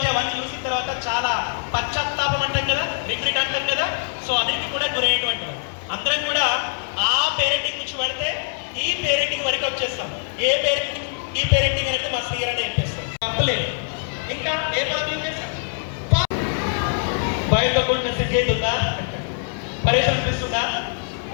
అవన్నీ చూసిన తర్వాత చాలా పశ్చాత్తాపం అంటాం కదా, రిగ్రెట్ అంటాం కదా. సో అన్నిటికీ కూడా గురయ్యేటువంటి అందరం కూడా ఆ పేరెంటింగ్ నుంచి పడితే ఈ పేరెంటింగ్ వరకు వచ్చేస్తాం. ఏ పేరెంటింగ్ ఈ పేరెంటింగ్ అనేది మా శ్రీగారు అని చెప్పేస్తాం, తప్పలేదు. ఇంకా ఏ పదవి చేస్తాం, బయటతో కూడిన సిద్ధి అవుతుందా, పరేషన్ అనిపిస్తుందా?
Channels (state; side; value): silent; right; 63 dB below the other